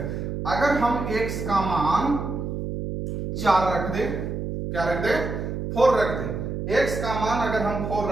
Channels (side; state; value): right; noise; hum, 4 dB below the sound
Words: अगर हम x का मान 4 रख दें, क्या रख दें, 4 रख दें, x का मान अगर हम 4